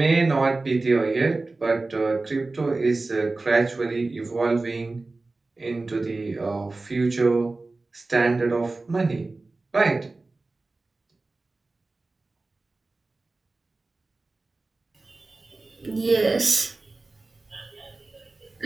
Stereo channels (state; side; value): quieter; left; 3.4 dB